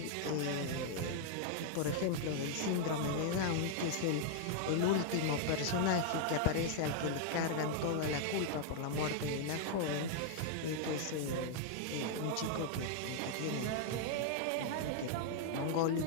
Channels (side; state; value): both; different; correlation -0.01